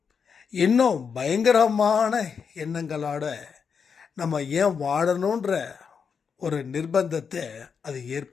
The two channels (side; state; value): right; quieter; 6.3 dB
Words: இன்னும் பயங்கரமான எண்ணங்களோட நம்ம ஏன் வாழணுன்ற ஒரு நிர்பந்தத்தை அது